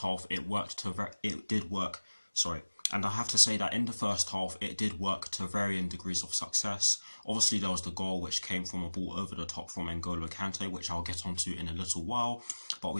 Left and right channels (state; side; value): inverted; both; correlation -1.00